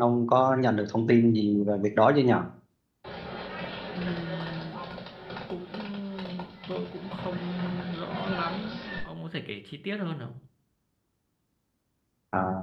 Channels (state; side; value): identical; both; correlation 1.00